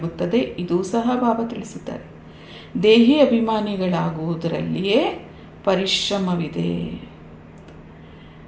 ಇದೂ ಸಹ ಬಾಬಾ ತಿಳಿಸುತ್ತಾರೆ. ದೇಹಿ ಅಭಿಮಾನಿಗಳಾಗುವುದರಲ್ಲಿಯೇ ಪರಿಶ್ರಮವಿದೆ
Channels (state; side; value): identical; both; correlation 1.00